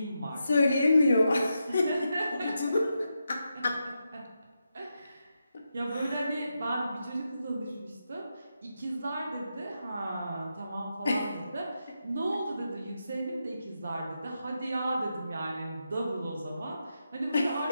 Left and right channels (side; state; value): both; inverted; correlation -0.86